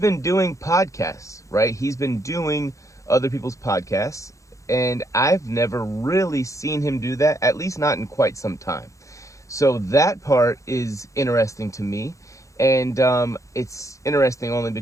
doing podcasts, right? He's been doing other people's podcasts, and I've never really seen him do that, at least not in quite some time. So that part is interesting to me. And it's interesting only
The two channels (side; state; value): right; late; 0.15 ms